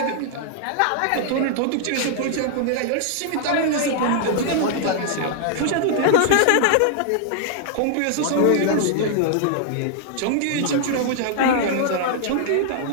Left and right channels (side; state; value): both; different; correlation -0.01